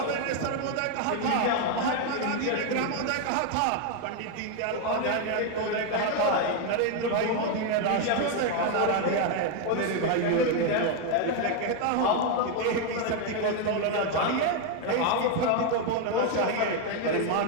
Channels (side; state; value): both; different; correlation 0.01